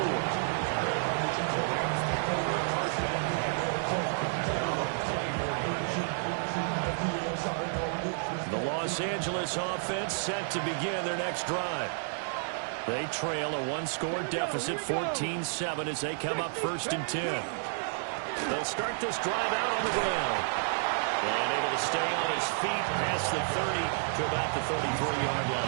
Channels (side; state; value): left; silent; digital silence